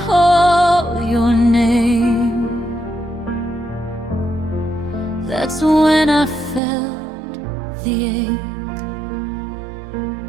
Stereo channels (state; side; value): drops out; left; at 6.6 s